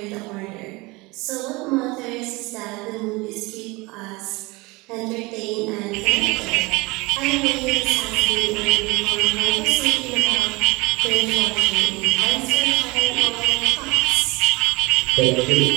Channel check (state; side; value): quieter; left; 24.1 dB